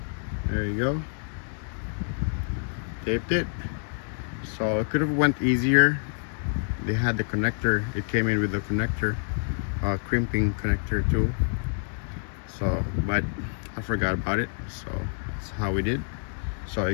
there you go. Taped it. So it could have went easier. They had the connector. It came in with the connector, crimping connector too. So, but I forgot about it. So that's how we did. So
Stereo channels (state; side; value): silent; right; digital silence